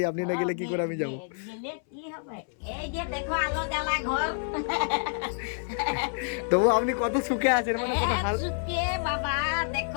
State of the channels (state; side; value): silent; right; 59 dB below the other